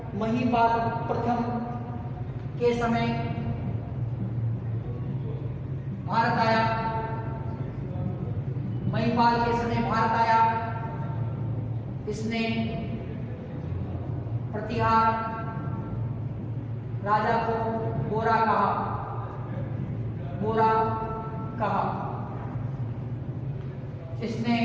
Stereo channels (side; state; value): both; identical; correlation 1.00